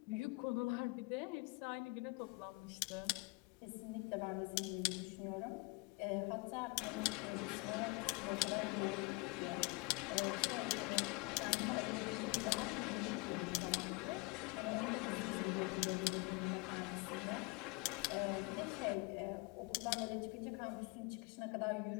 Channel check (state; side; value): quieter; right; 27.8 dB